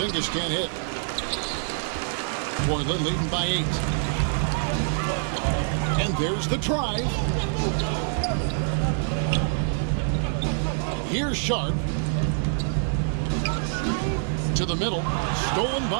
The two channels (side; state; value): left; silent; digital silence